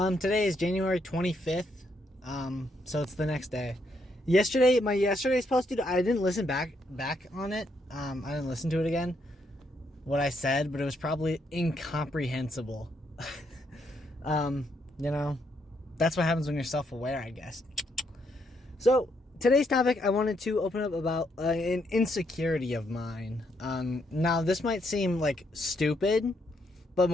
Today is January 25th. So it's the next day. My yesterday's post, dude, I didn't listen back on it. I didn't listen to it again. What I said, but it was probably incomprehensible. That's what happens when you're self-aware, I guess. So today's topic, I wanted to open up about an insecurity of mine. Now this might seem like stupid, but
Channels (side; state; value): both; normal; correlation 0.75